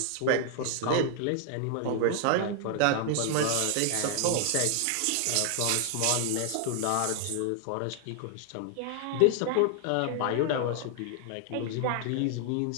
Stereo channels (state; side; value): different; both; correlation 0.00